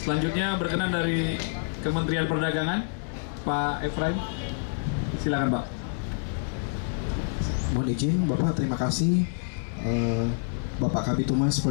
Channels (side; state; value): right; silent; digital silence